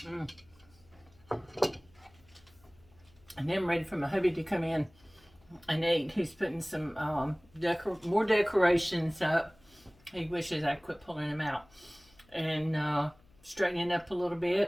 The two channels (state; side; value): noise; left; hum, 29 dB below the sound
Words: Mm. And then I'm ready for my hubby to come in and eat. He's putting some more decorations up. He wishes I quit pulling them out. And straightening up a little